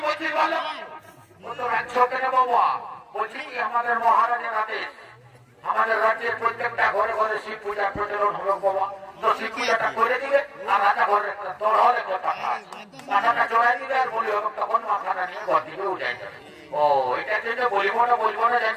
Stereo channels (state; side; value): identical; both; correlation 1.00